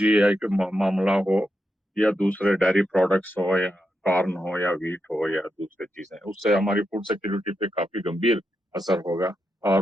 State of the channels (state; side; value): normal; both; correlation 0.85